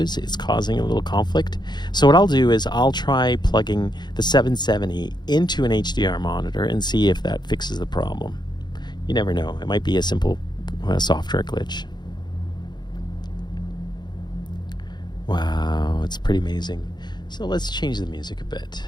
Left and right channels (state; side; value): late; right; 0.21 ms